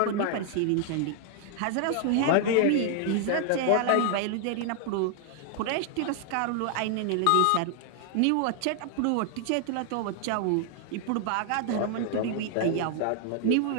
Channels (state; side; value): different; both; correlation 0.00